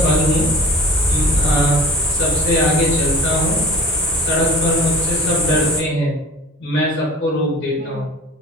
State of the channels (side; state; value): both; normal; correlation 0.42